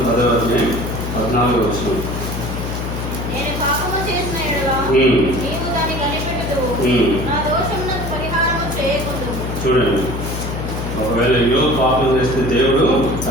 10వ అధ్యాయం 14వ వచనం. నేను పాపము చేసిన ఎడల నీవు దాన్ని కనిపెట్టుదువు, నా దోషమునకు పరిహారము చేయకుందువు. చూడండి, ఒకవేళ యోగు పాపం చేస్తే దేవుడు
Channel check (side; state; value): left; noise; hum, 5 dB below the sound